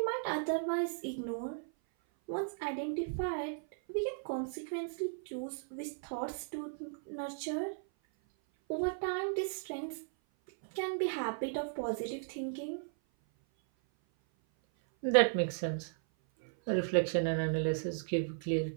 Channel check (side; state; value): left; silent; 54 dB below the other